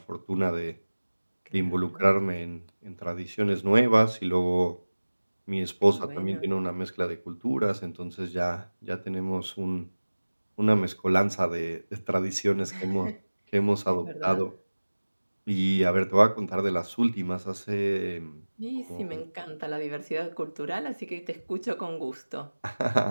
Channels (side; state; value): both; inverted; correlation -1.00